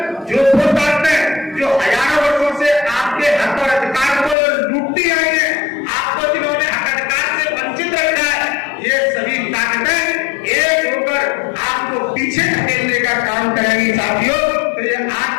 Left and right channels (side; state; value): right; drops out; at 4.4 s